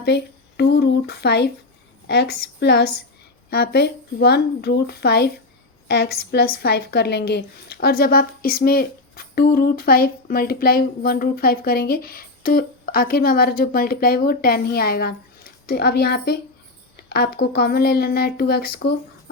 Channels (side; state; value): right; quieter; 3.0 dB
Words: पे 2√5x प्लस यहाँ पे 1√5x + 5 कर लेंगे। और जब आप इसमें 2√5 × 1√5 करेंगे तो आखिर में हमारा जो मल्टीप्लाई वो 10 ही आएगा। तो अब यहाँ पे आपको कॉमन ले लेना है 2x को,